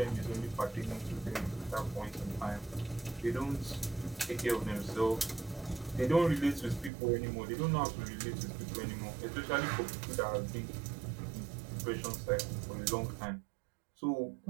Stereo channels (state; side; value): drops out; left; at 6.9 s